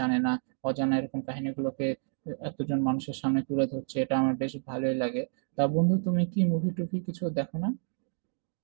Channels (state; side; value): silent; left; digital silence